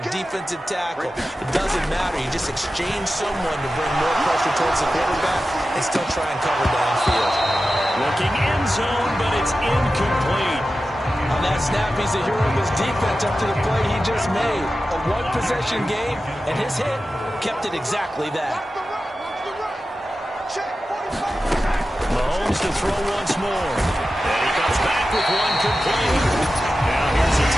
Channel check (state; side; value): normal; both; correlation 0.93